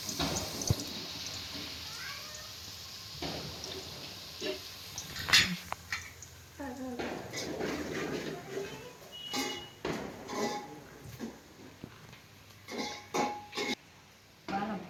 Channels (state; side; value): identical; both; correlation 1.00